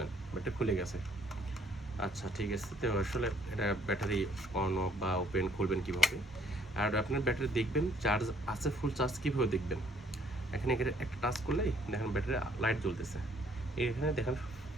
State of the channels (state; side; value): normal; both; correlation 0.64